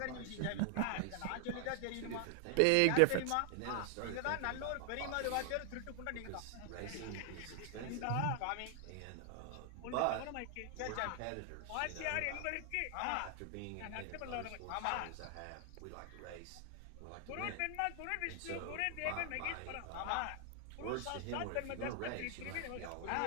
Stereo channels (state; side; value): different; both; correlation 0.00